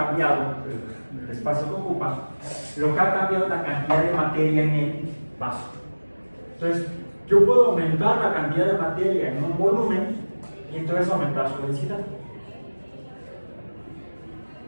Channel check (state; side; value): inverted; both; correlation -1.00